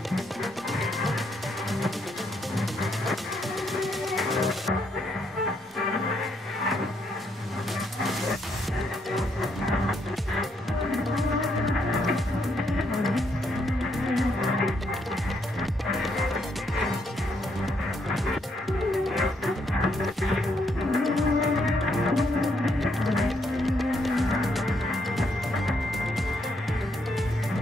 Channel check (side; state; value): both; normal; correlation 0.75